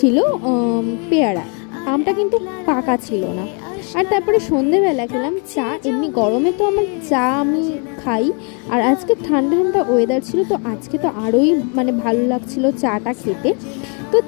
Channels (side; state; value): right; quieter; 36.4 dB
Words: পেয়ারা। আমটা কিন্তু পাকা ছিল না। আর তারপরে সন্ধেবেলা খেলাম চা। এমনি গরমে তো আমার চা আমি খাই, আর আজকে ঠান্ডা ঠান্ডা ওয়েদার ছিল, তো আজকে তো আরোই ভালো লাগছিল চাটা খেতে। তো